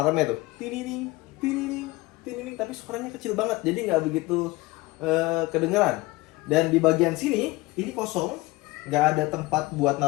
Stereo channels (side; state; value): right; quieter; 21.1 dB